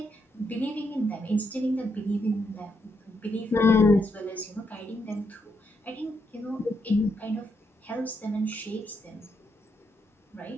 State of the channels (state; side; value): normal; both; correlation 0.79